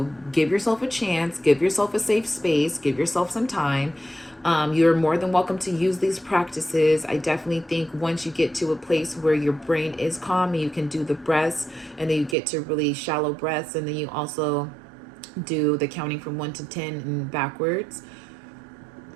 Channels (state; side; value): drops out; left; at 12.4 s